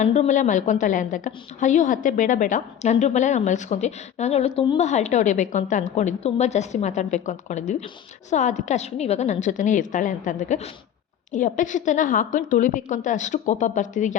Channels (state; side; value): quieter; right; 9.6 dB